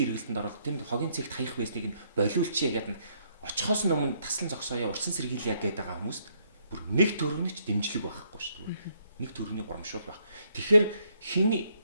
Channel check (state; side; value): inverted; both; correlation -0.71